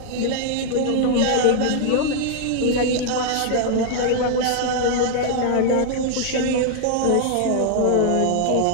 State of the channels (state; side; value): different; both; correlation 0.00